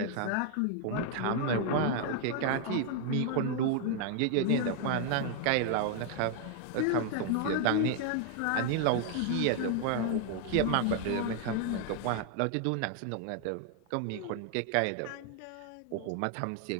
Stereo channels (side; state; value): both; different; correlation 0.00